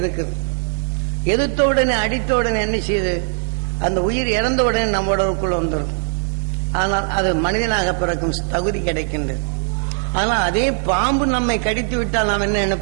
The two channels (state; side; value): silent; left; digital silence